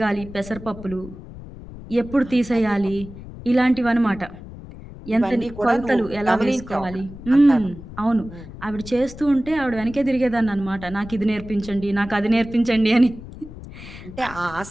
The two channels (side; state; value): left; noise; rumble, 15 dB below the sound